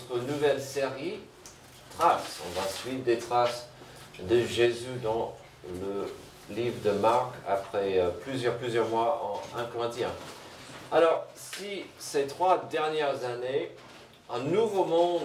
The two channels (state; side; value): identical; both; correlation 1.00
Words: nouvelle série, Traces. On va suivre des traces de Jésus dans le livre de Marc après plusieurs mois en 1 Corinthiens. Alors, si ces 3 dernières années, un nouveau